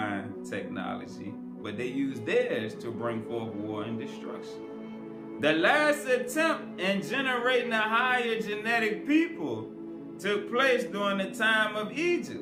technology, but they use theirs to bring forth war and destruction. The last attempt in generating a higher genetic people took place during the time of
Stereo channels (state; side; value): identical; both; correlation 1.00